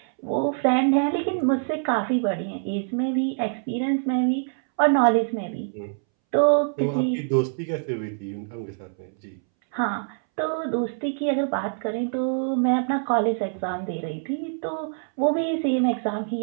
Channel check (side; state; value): left; silent; 62 dB below the other